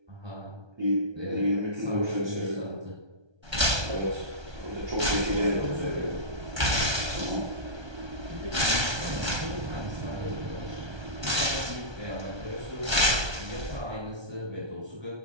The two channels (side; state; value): left; late; 1.2 ms